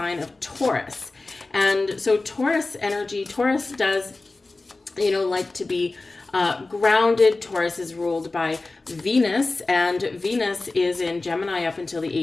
of Taurus. And so Taurus energy, Taurus does, like to be grounded. Taurus is ruled by Venus, and Venus is in Gemini up until the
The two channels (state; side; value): quieter; right; 3.3 dB